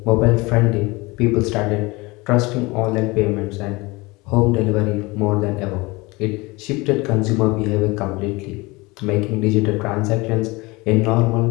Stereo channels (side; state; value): right; quieter; 23.8 dB